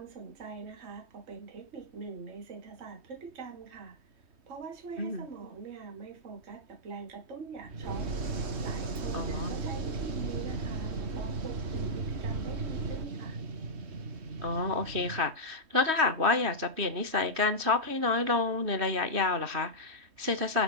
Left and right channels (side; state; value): left; late; 3.2 ms